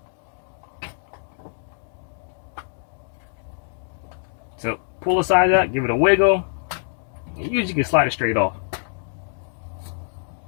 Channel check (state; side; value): silent; right; digital silence